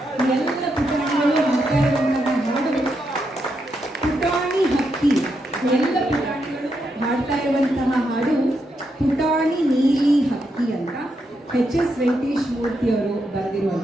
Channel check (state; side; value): normal; both; correlation 0.82